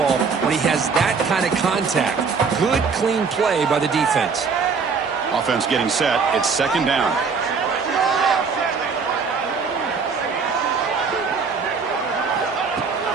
when he has that kind of contact. Good, clean play by the defense. Offense getting set. It's second down.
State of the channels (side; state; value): left; quieter; 5.3 dB